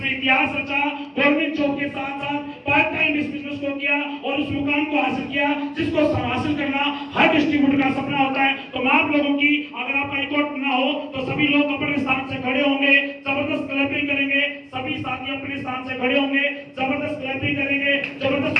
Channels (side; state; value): both; identical; correlation 1.00